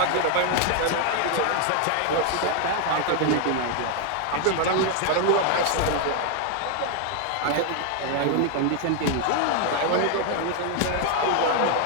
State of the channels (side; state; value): both; different; correlation 0.01